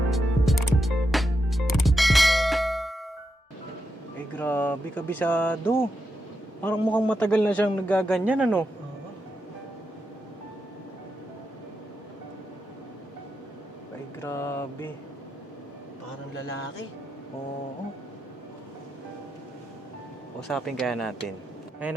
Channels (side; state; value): both; normal; correlation 0.85